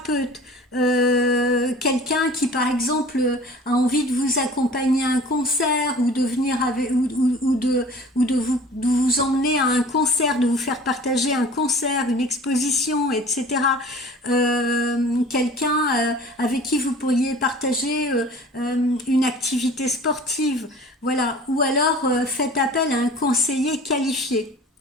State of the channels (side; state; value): both; normal; correlation 0.44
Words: quelqu'un qui par exemple a envie de vous accompagner à un concert ou de venir avec, de vous emmener à un concert, de vous faire partager un concert, une exposition, etc. Quelqu'un avec qui vous pourriez partager une activité sportive, voilà, ou alors faites appel à un conseiller qualifié.